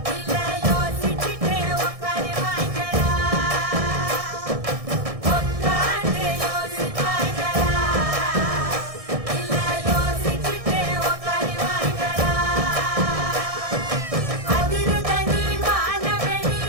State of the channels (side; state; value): left; late; 1.6 ms